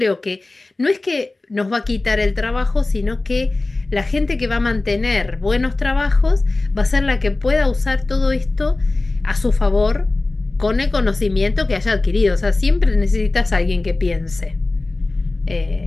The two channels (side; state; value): right; quieter; 3.1 dB